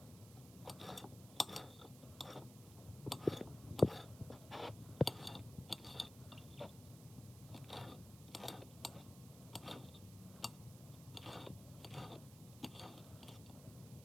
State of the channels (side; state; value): right; noise; hiss, 17 dB below the sound